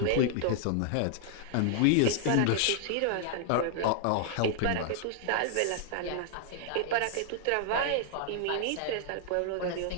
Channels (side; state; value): both; different; correlation 0.00